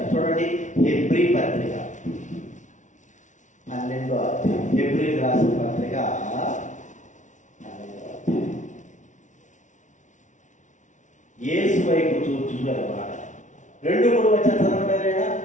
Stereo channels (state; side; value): late; right; 0.36 ms